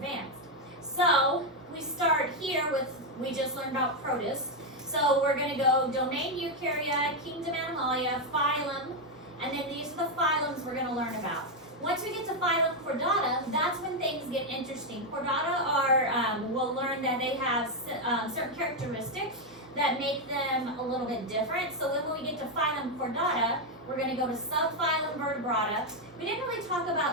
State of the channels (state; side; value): normal; both; correlation 0.03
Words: So we start here with, we just learned about protists. So we're going to go domain Eukarya, kingdom Animalia, phylum, and then these are the phylums we're going to learn about. Once we get to phylum Chordata, that's when things get interesting. Chordata are, we'll learn that they have certain characteristics that make them a little bit different. So when we get to phylum Chordata, we're going to go to subphylum Vertebrata. We didn't really talk